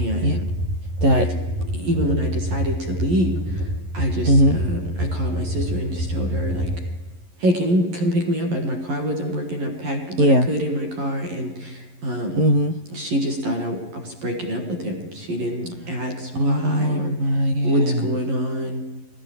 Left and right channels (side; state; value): left; late; 11 ms